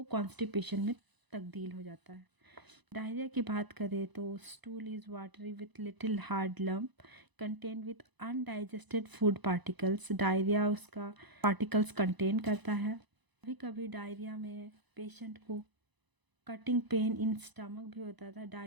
कॉन्स्टिपेशन में तब्दील हो जाता है। डायरिया की बात करें तो stool is watery with little hard lump contain with undigested food particles. Diarrhoea उसका पार्टिकल्स कंटेन करता है। कभी कभी डायरिया में पेशेंट को कटिंग पेन इन स्टमक भी होता था।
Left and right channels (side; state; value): left; late; 1.0 ms